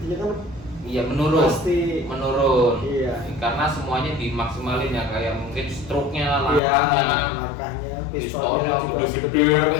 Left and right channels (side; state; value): right; drops out; at 6.6 s